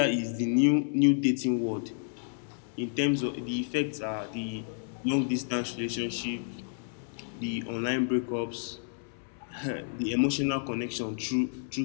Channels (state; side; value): silent; right; 57 dB below the other